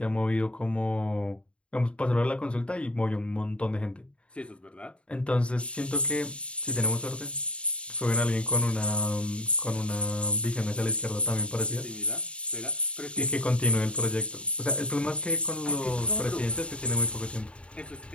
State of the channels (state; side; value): late; right; 0.058 ms